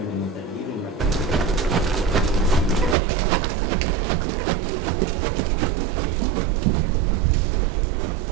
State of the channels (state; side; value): drops out; left; at 3.0 s